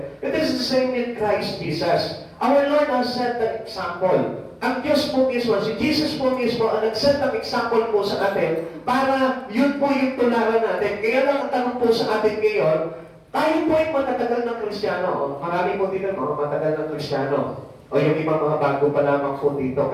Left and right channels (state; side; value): identical; both; correlation 1.00